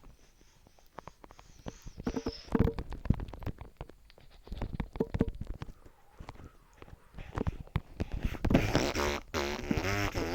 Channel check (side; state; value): both; identical; correlation 1.00